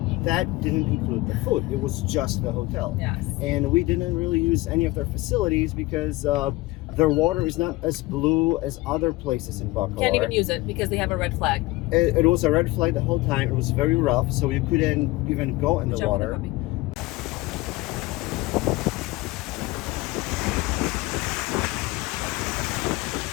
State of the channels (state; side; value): quieter; right; 20.6 dB